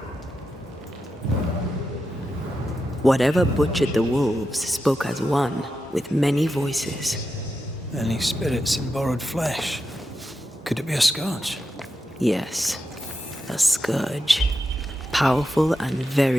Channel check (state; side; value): normal; both; correlation 0.88